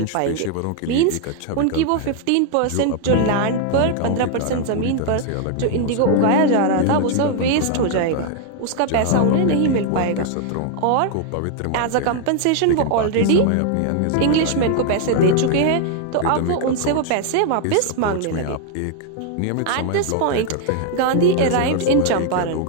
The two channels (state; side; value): different; both; correlation 0.00